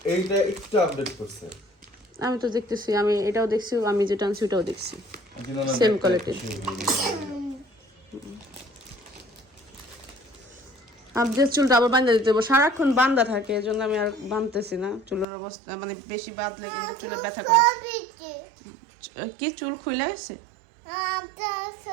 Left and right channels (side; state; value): left; drops out; at 15.2 s